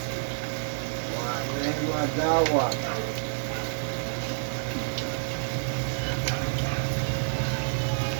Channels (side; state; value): left; silent; digital silence